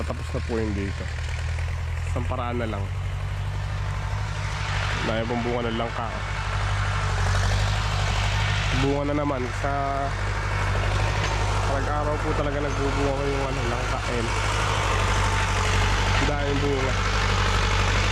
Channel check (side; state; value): both; identical; correlation 1.00